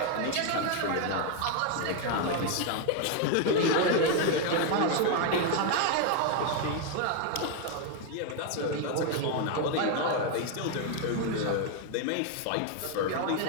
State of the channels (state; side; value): different; both; correlation 0.01